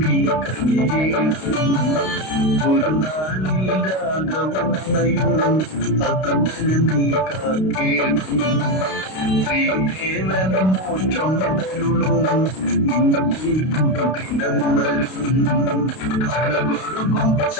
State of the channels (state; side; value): late; right; 32 ms